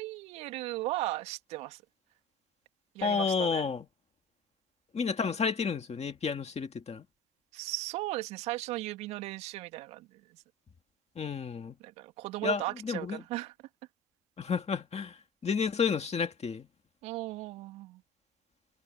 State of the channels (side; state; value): both; normal; correlation 0.35